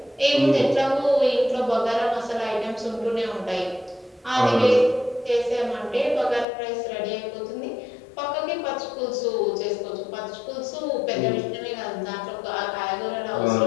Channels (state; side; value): drops out; right; at 6.5 s